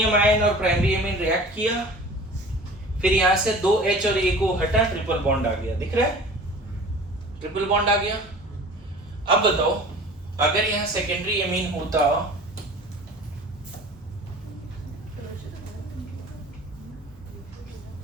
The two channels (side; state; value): both; normal; correlation 0.42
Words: आयन और प्राइमरी एमीन रिएक्ट किया, फिर यहां से 2H और A को हटा, ट्रिपल बॉन्ड आ गया, दिख रहा है ट्रिपल बॉन्ड आ गया। अब बताओ अगर यहां सेकेंडरी एमीन होता